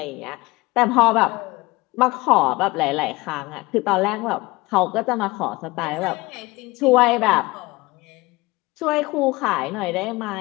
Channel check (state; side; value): quieter; right; 22.0 dB